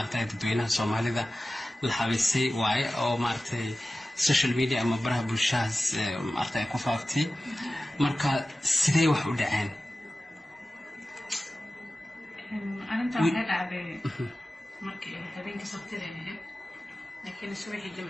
dadweynaha Soomaalida la xabiisay waay oo maartay social media ama baraha bulshada maartay ku faaftay marka sidee wax u dhaceen arinta waxay dhacday markii habeenkii sabtida ahayd laakiin subaxii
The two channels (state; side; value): normal; both; correlation 0.96